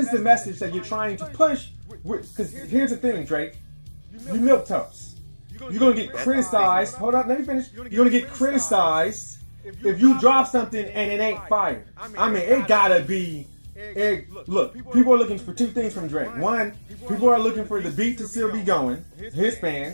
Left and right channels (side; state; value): both; inverted; correlation -1.00